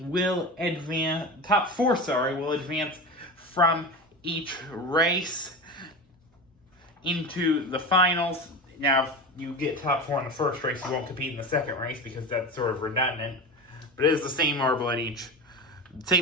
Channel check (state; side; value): normal; both; correlation 0.26